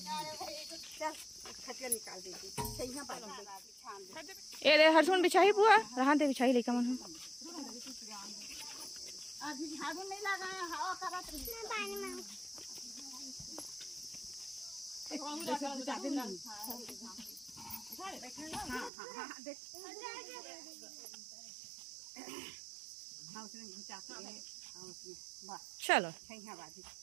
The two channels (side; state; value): left; drops out; at 18.9 s